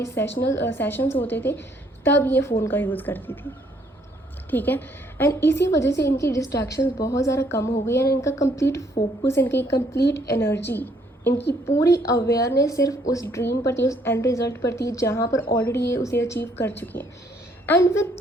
सेशंस होते थे तब ये फ़ोन का यूज़ करती थी, ठीक है। एंड इसी वजह से इनकी डिस्ट्रैक्शंस बहुत ज़्यादा कम हो गई, एंड इनका कंप्लीट फोकस, इनकी कंप्लीट एनर्जी, इनकी पूरी अवेयरनेस सिर्फ उस ड्रीम पर थी, उस एंड रिजल्ट पर थी, जहाँ पर ऑलरेडी ये उसे अचीव कर चुकी हैं। एंड विद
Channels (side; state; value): both; normal; correlation 0.67